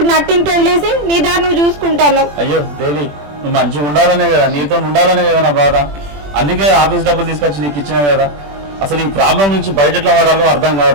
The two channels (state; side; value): late; left; 21 ms